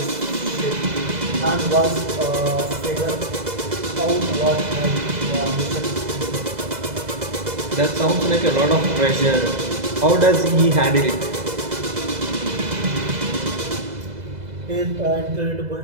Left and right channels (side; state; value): left; late; 2.0 ms